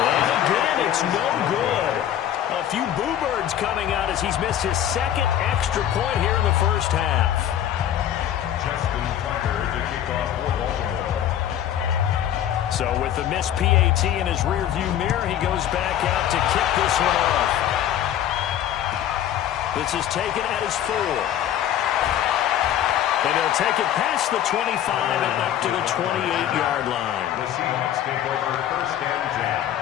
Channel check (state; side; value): quieter; right; 11.0 dB